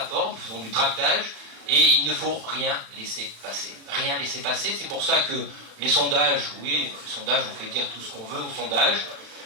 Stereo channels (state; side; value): late; left; 36 ms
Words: nous faisons du tractage, et il ne faut rien laisser passer. Rien laisser passer, c'est pour ça que les sondages, oui, les sondages, on fait dire tout ce qu'on veut aux sondages,